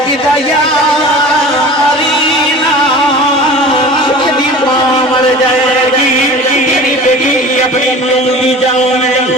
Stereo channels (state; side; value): normal; both; correlation 0.39